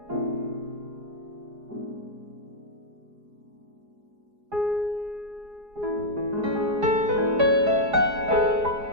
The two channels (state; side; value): late; left; 4.8 ms